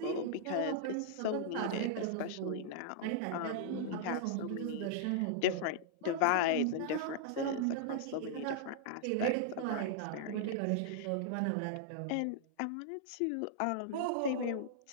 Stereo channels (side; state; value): both; different; correlation -0.01